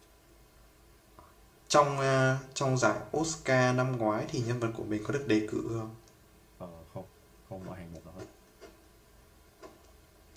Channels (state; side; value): identical; both; correlation 1.00